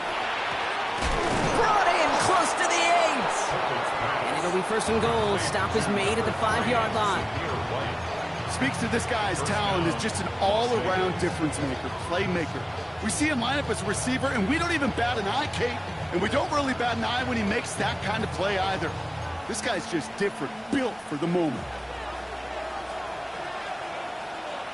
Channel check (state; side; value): identical; both; correlation 1.00